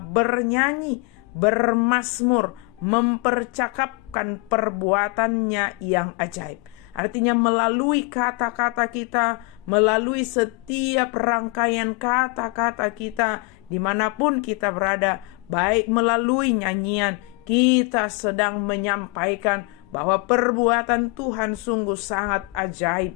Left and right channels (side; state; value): right; quieter; 28.4 dB